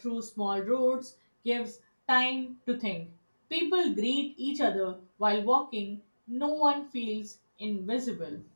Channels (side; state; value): both; inverted; correlation -1.00